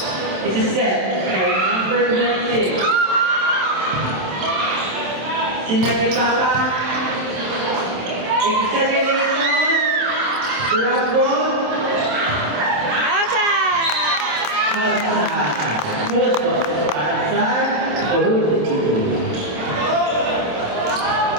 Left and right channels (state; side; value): late; left; 27 ms